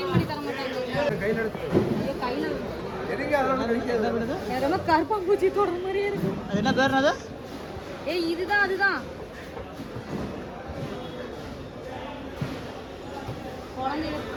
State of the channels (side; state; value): both; identical; correlation 1.00